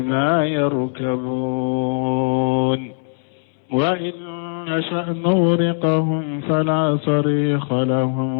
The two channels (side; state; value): right; silent; digital silence